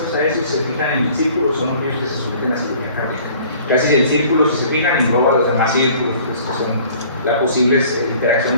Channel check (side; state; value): both; inverted; correlation -0.52